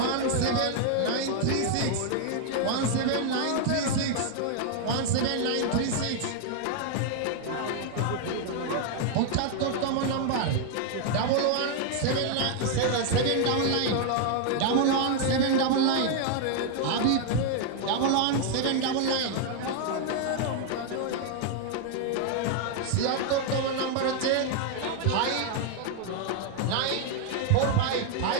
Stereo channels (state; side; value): different; both; correlation 0.00